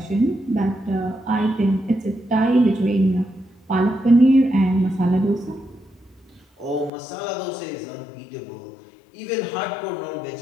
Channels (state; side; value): drops out; right; at 6.9 s